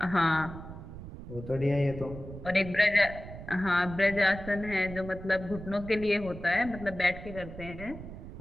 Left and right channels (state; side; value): noise; right; rumble, 12 dB below the sound